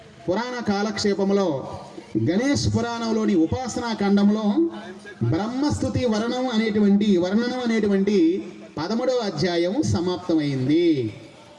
పురాణ కాలక్షేపములో గణేష్ పురాణంలోని ఉపాసనా ఖండంలో బ్రహ్మస్తుతి వర్ణనం అనేటువంటి 13వ అధ్యాయము సమాప్తమైంది.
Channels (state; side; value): identical; both; correlation 1.00